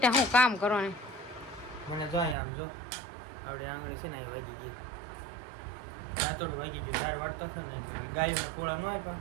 હું કામ કરો ને મને જો અહીંયા આમ જો આવડે આંગળી છે ને અહીં વાગી ગઈ દાંતોડ વાગી ગયું ઝાડ વાળતો હતો ને ગાયોને પોળા ન હોય પણ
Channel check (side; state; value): left; drops out; at 2.4 s